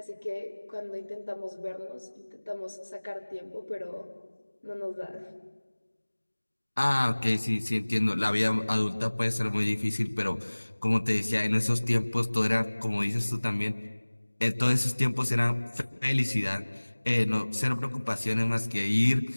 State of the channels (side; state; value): both; inverted; correlation -1.00